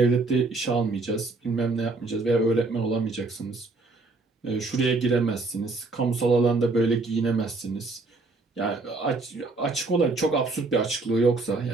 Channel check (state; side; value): quieter; left; 3.5 dB